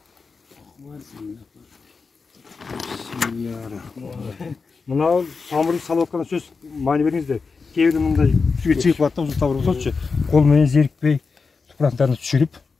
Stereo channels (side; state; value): right; quieter; 4.7 dB